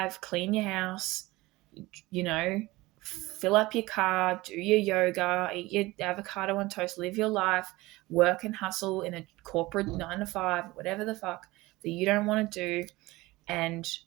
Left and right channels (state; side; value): quieter; left; 20.2 dB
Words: clean your house, you know, fill up your car, do your yoga, eat your avocado on toast, live your life, work and hustle in a corporate 9 to 5, whatever the fuck that you don't want to do. And